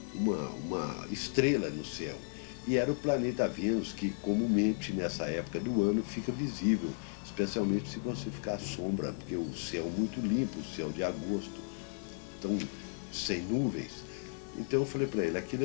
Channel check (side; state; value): right; silent; 55 dB below the other